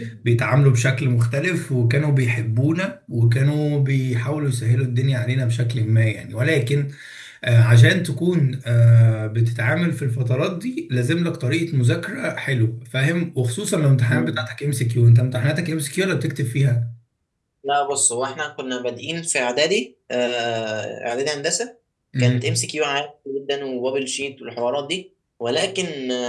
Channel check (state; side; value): identical; both; correlation 1.00